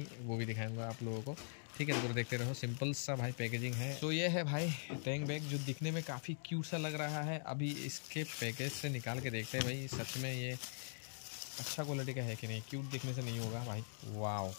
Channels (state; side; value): silent; right; digital silence